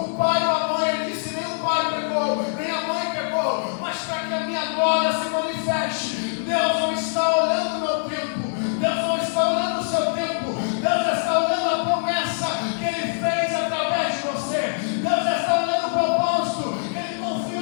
O pai ou a mãe? Ele disse: nem o pai pegou, nem a mãe pegou, mas para que a minha glória se manifeste. Deus não está olhando o meu tempo, Deus não está olhando o seu tempo, Deus está olhando a promessa que Ele fez através de você. Deus está olhando o propósito que Ele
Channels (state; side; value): silent; right; 63 dB below the other